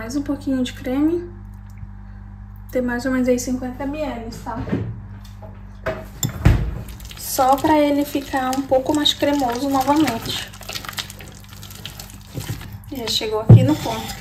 um pouquinho de creme. Tem mais ou menos aí 50 ml, tá? Só pra ele ficar um pouco mais cremoso novamente. Já chegou aqui no ponto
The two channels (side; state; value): both; identical; correlation 1.00